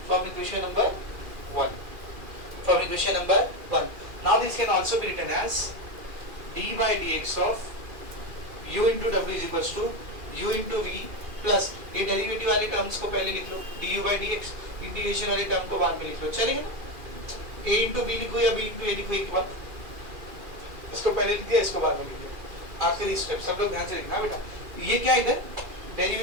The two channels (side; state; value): left; late; 2.4 ms